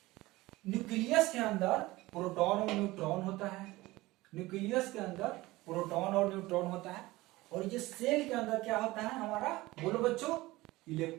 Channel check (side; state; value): left; quieter; 19.4 dB